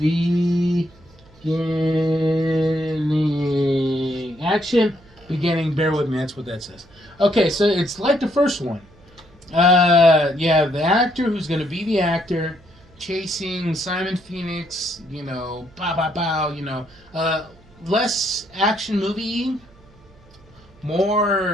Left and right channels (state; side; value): noise; right; hum, 27 dB below the sound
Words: Action beginning. Bear with me. That's what that says. Okay, so it's like the first one. You have the actor who's going to be the actor chasing Simon Phoenix, pow, pow, pow, less action movie,